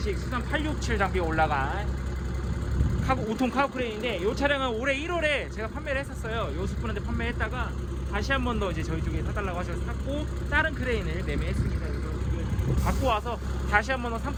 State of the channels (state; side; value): identical; both; correlation 1.00